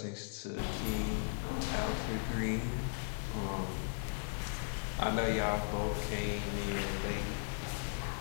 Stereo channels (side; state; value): right; silent; digital silence